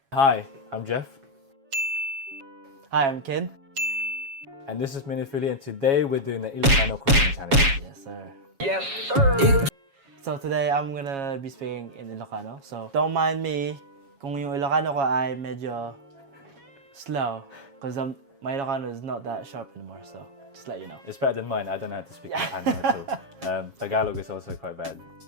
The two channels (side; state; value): left; late; 7.3 ms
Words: Hi, I'm Jeff. Hi, I'm Ken. And this is Minifili, and today we're doing the Ilocano cooking challenge. Yes, sir. Yes, sir! So today, I'm gonna be speaking in Ilocano. So, don't mind me kung yung Ilocano ko ay medyo slow. Because my Ilocano is not that sharp anymore, so just let you know. It's better than mine. I don't know how to speak Ilocano at all. Tagalog is also quite bad.